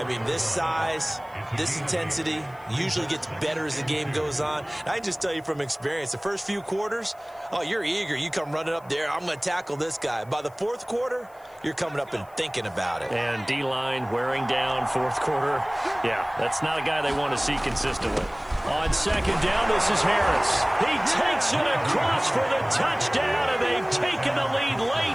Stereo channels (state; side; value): noise; left; hiss, 29 dB below the sound